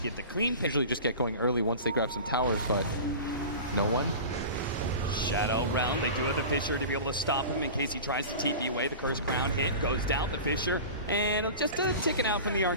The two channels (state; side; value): inverted; both; correlation -0.34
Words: get the clean pick. Usually just get going early once they grab some towers, but no one. Shadow Realm. They do have the Fisher to be able to stop him in case he tries to TP away. The Curse Crown hit goes down. The Fisher and just ticking out from the